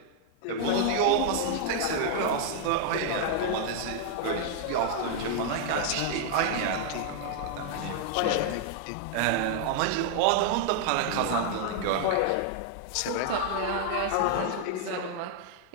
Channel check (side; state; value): both; different; correlation 0.00